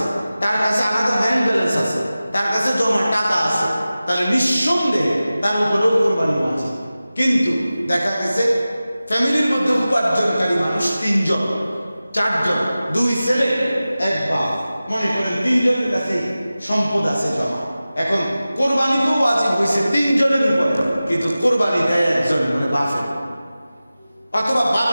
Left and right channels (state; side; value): inverted; both; correlation -0.96